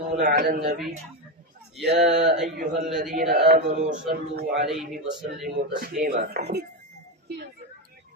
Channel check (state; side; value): normal; both; correlation 0.12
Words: على النبي يا أيها الذين آمنوا صلوا عليه وسلموا تسليما